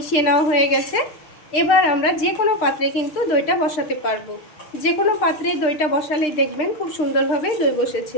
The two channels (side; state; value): right; late; 6.6 ms